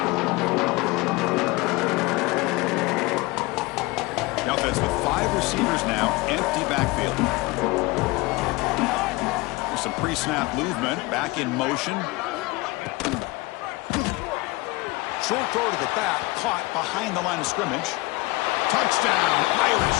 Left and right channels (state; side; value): quieter; right; 22.8 dB